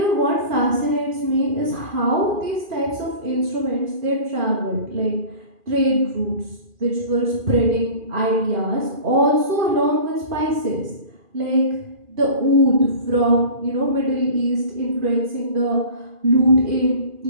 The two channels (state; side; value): late; left; 2.4 ms